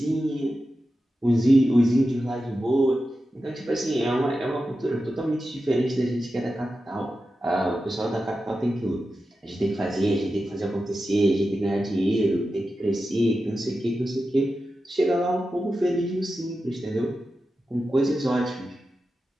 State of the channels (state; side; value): normal; both; correlation 0.91